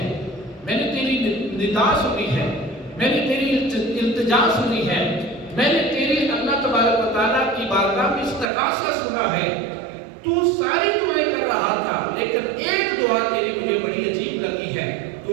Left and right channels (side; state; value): left; drops out; at 8.5 s